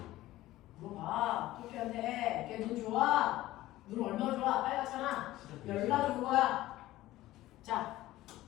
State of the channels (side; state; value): right; quieter; 16.1 dB